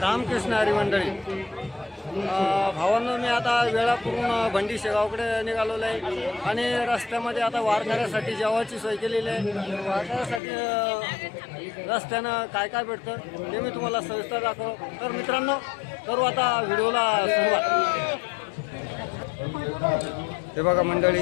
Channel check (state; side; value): drops out; right; at 10.4 s